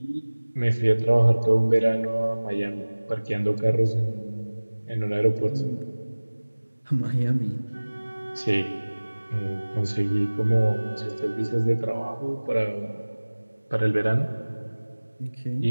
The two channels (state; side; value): inverted; both; correlation -1.00